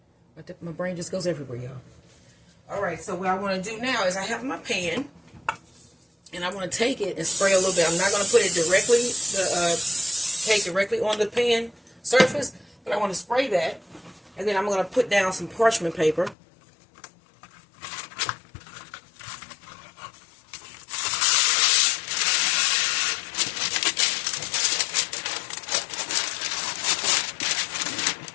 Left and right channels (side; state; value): right; drops out; at 16.4 s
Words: My brain just goes everywhere, y'all. Alright, so what I want to do now is I have my pan. And I want to take it and spray a little bit. I'm not going to put it directly, cake directly on the pan surface. But I want to spray that. And then I'm going to put down some parchment paper.